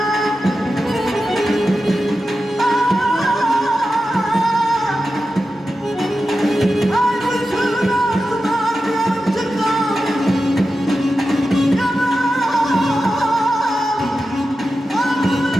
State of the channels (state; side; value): normal; both; correlation 0.92